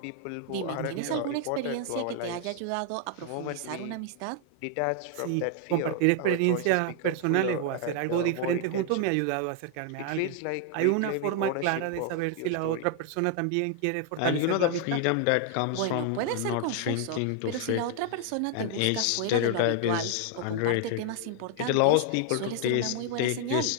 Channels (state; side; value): different; both; correlation 0.00